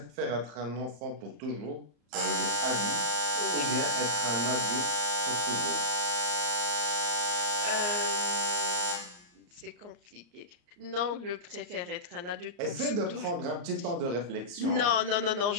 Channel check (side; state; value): left; late; 34 ms